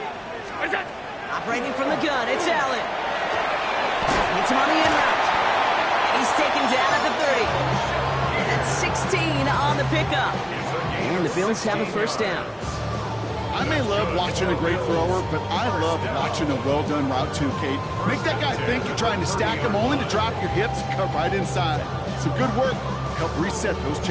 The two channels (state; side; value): identical; both; correlation 1.00